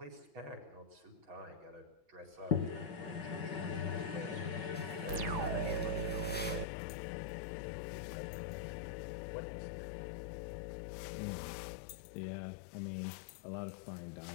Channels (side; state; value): right; drops out; at 6.7 s